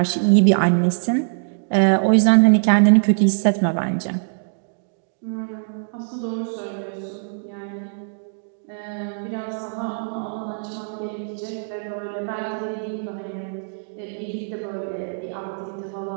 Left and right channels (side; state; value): left; silent; digital silence